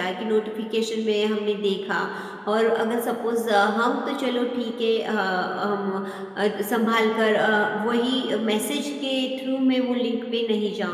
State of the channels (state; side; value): identical; both; correlation 1.00